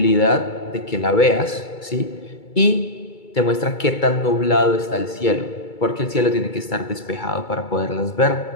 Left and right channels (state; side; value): late; right; 2.3 ms